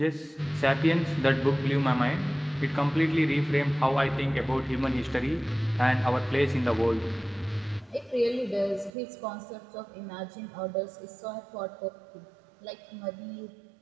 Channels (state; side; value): drops out; left; at 8.9 s